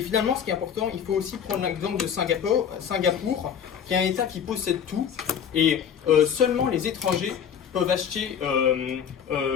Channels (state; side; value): quieter; right; 8.1 dB